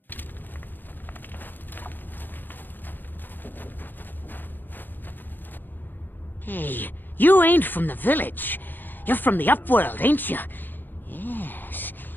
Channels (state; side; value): late; right; 0.090 ms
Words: You ain't from the village. You're from the Upworld, ain't you? Yes.